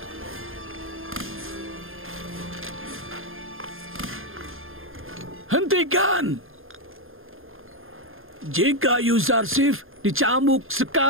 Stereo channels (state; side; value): late; left; 0.60 ms